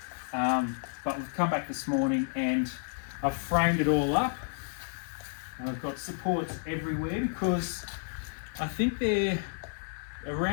But we've come back this morning and I've framed it all up. And I've got supports everywhere because I think they're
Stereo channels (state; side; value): silent; right; 57 dB below the other